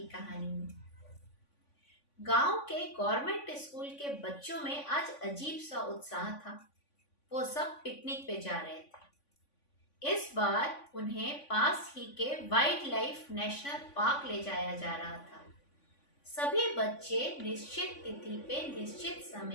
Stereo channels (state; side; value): late; right; 3.5 ms